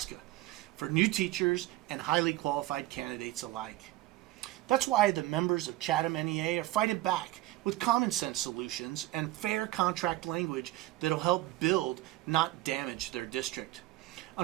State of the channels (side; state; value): left; quieter; 16.7 dB